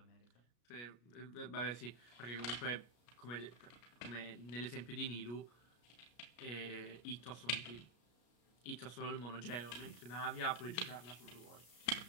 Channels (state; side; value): late; right; 33 ms